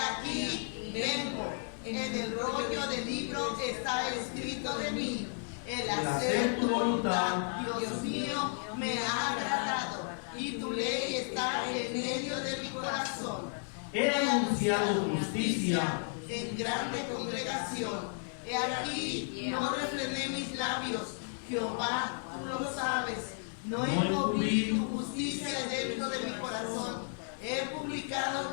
vengo. En el rollo del libro está escrito de mí: el hacer tu voluntad, Dios mío, me ha agradado, y tu ley está en medio de mi corazón. He anunciado justicia en grande congregación. He aquí, no refrené mis labios. Jehová, tú lo sabes. No encubrí tu justicia dentro de mi corazón. He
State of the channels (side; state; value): right; silent; 55 dB below the other